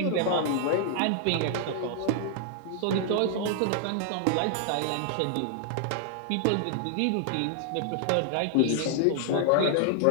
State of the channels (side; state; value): both; different; correlation 0.00